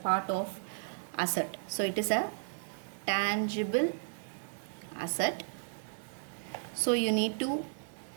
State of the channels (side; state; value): left; silent; digital silence